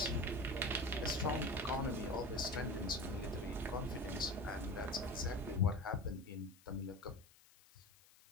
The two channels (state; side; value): noise; left; hiss, 26 dB below the sound